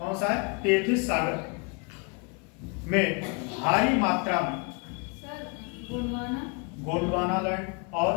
सा है? 33 सागर में भारी मात्रा में गोंडवाना लैंड और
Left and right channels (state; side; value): quieter; right; 32.8 dB